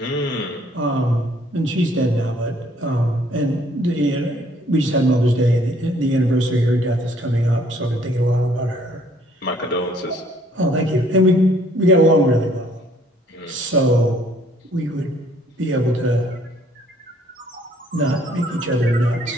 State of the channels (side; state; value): both; normal; correlation 0.61